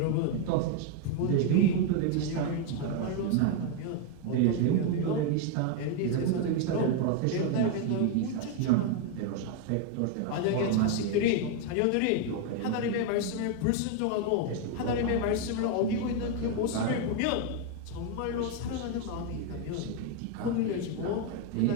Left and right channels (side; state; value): both; different; correlation 0.01